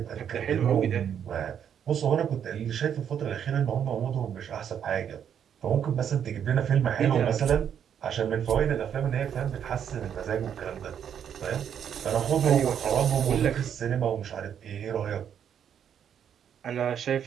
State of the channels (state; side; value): quieter; left; 8.7 dB